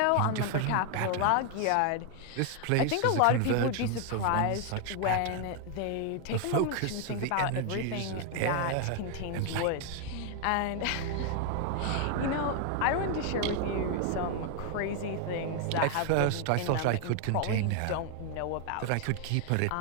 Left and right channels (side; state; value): both; different; correlation 0.00